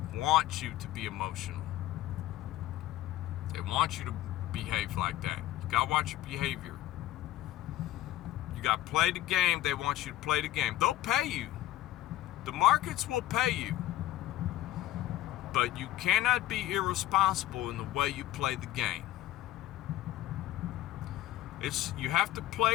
want you to be emotional. They want you to behave like that. You gotta watch your behavior. You gotta play the game. They want you to play the game. They'll pay you. The markets will pay you. But you cannot be irresponsible in the way you play the game. You have to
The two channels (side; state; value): right; quieter; 14.5 dB